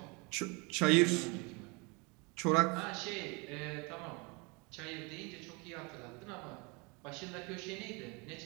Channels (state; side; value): quieter; left; 29.5 dB